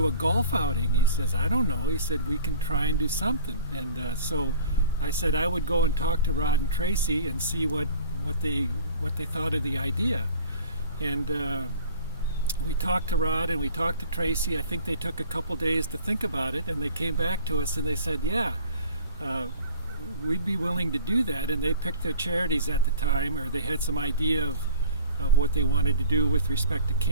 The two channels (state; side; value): inverted; both; correlation -0.47